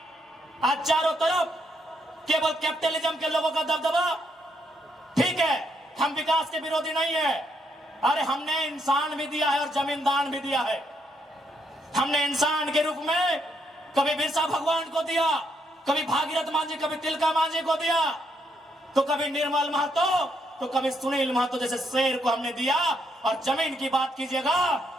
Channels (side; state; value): both; normal; correlation 0.75